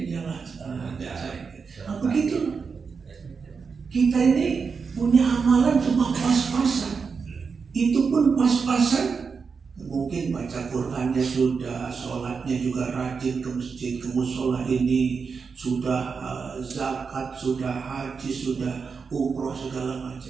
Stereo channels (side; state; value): left; quieter; 5.4 dB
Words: jalan. Begitu. Kita ini punya amalan cuma pas-pasan. Itu pun pas-pasan. Mungkin baca Qurannya sudah, sholatnya juga rajin ke masjid, ke musola ini, sudah zakat, sudah haji, sudah umroh segala